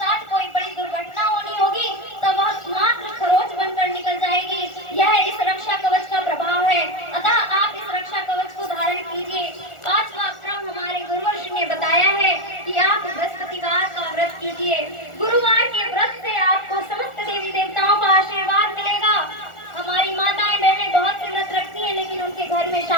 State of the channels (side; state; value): right; late; 1.4 ms